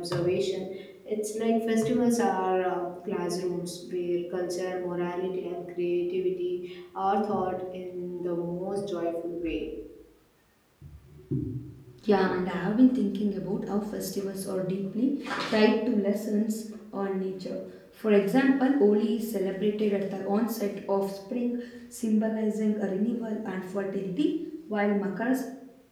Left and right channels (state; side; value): identical; both; correlation 1.00